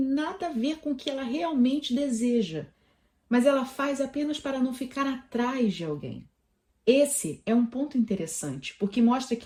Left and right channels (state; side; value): identical; both; correlation 1.00